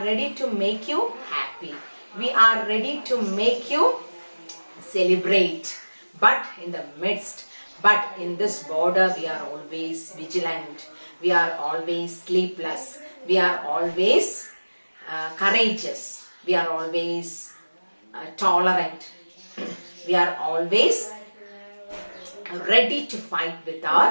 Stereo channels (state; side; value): inverted; both; correlation -1.00